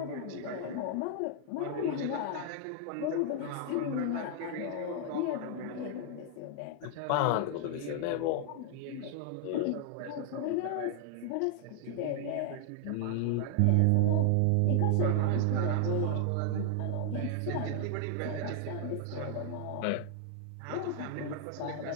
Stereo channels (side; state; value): both; different; correlation 0.00